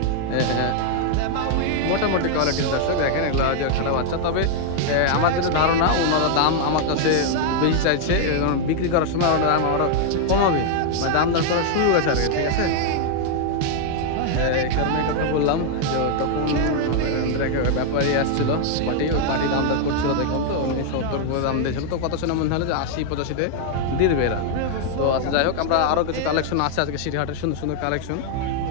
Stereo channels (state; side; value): different; both; correlation 0.00